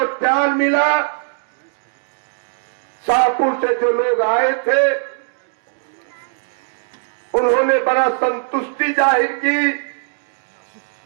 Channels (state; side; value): silent; left; 65 dB below the other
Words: प्यार मिला। शाहपुर से जो लोग आए थे उन्होंने बड़ा संतुष्टि जाहिर की,